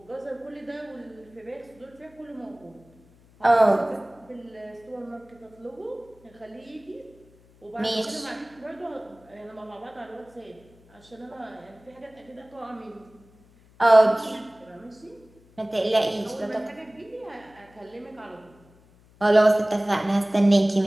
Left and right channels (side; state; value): left; noise; hum, 28 dB below the sound